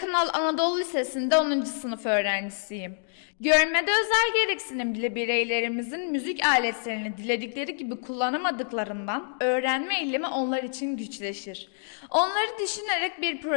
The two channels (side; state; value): right; silent; digital silence